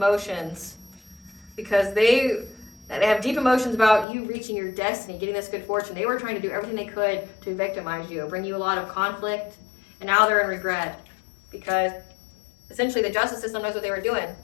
because they have deep emotions about you reaching your destiny, getting this good fortune. They were trying to do everything they could to victimize you, bring you a lot of conflict, and now they're in regret because essentially the justice system knows what they were doing.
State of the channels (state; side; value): drops out; right; at 4.0 s